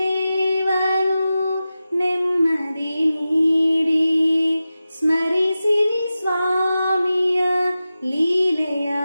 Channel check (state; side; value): inverted; both; correlation -0.93